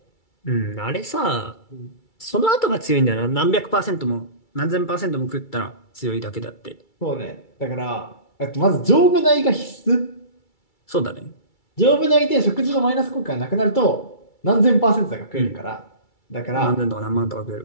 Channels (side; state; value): right; late; 2.3 ms